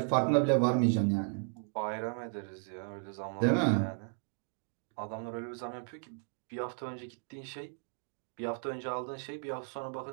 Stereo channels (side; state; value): left; silent; 55 dB below the other